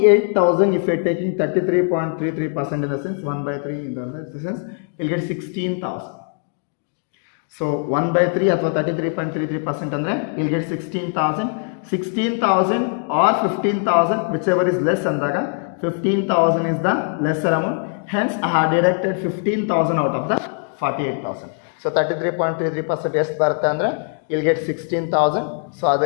if you are taking 33.33% in the sense 1 by 3 in the sense, you will get 16,000. So 1 by 3 or 33.33% andre you will get 16,000. 16,000 or 15,000, whichever is less andaga 15,000 is the lesser amount. Hence I have deducted 15,000 out of the 48,000. So 33.33% ಎಷ್ಟು ಬರುತ್ತೆ ಅಂದರೆ you'll get 16,000. So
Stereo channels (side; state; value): right; silent; 58 dB below the other